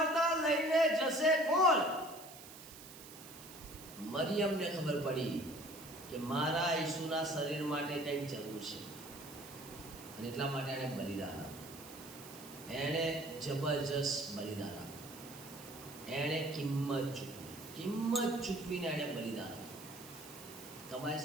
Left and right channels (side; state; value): right; noise; hiss, 15 dB below the sound